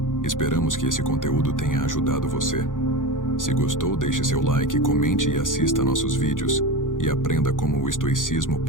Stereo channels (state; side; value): late; right; 0.89 ms